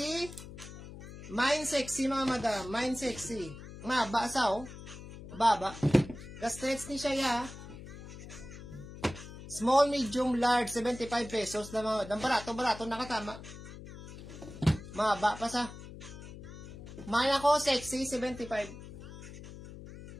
Mine sexy, mga madam. Mine sexy. Maba sa, oh. Baba. Stretch ni siya, ya. Small, medium, large, 75 pesos na mga madam. Barato, nakatama. Maba pa sa. Mine ako, sexy, 75.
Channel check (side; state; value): left; noise; hum, 13 dB below the sound